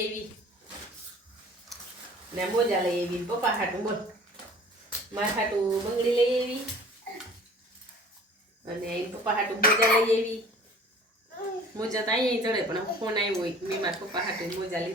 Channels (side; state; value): both; normal; correlation 0.48